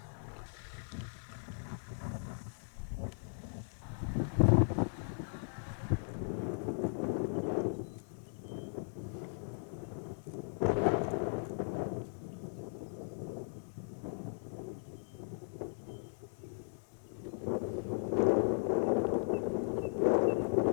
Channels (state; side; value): silent; right; digital silence